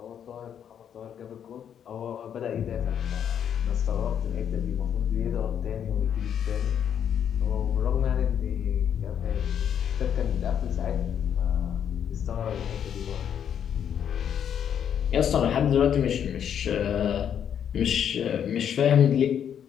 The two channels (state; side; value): quieter; right; 8.8 dB